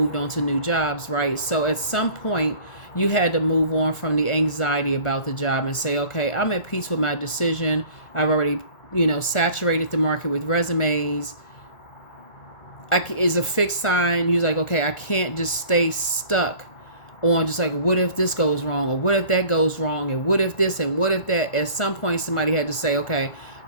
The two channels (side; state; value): right; late; 1.4 ms